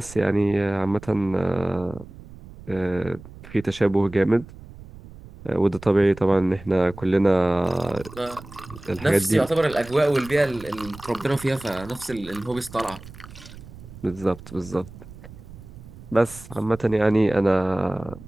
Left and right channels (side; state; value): right; noise; rumble, 17 dB below the sound